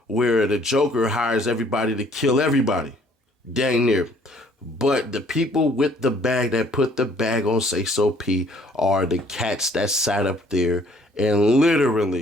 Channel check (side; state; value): both; normal; correlation 0.60